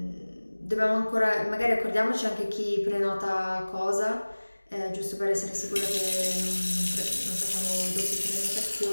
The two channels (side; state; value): both; inverted; correlation -1.00